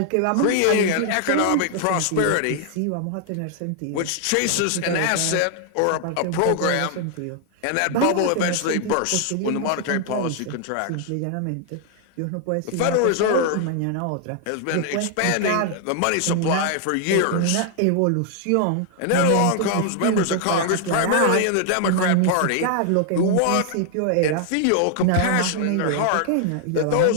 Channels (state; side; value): different; both; correlation 0.00